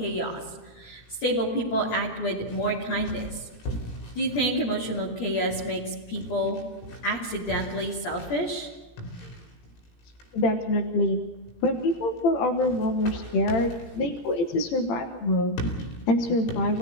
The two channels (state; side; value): late; right; 17 ms